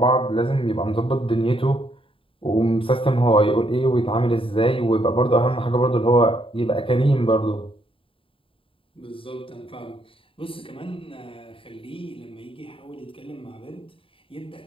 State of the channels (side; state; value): right; late; 0.26 ms